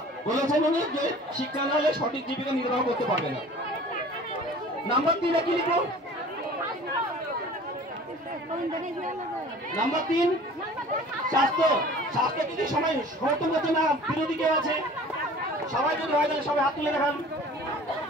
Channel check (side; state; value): both; normal; correlation 0.45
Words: বলেছেন উনি যে শিক্ষা না হলে সঠিক জীবিকা নির্বাহ করতে পারবে না। নাম্বার 3 কি লিখো? নাম্বার 3 স্বাস্থ্য। স্বাস্থ্য যদি সবাই সমর্থন করছে না, বিরোধী কেউ আছে? সবাই যদি হয় তাহলে সবাই হাত তুলে দেখান।